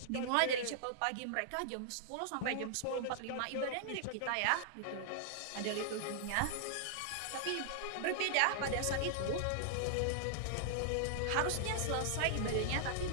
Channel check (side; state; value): both; different; correlation -0.01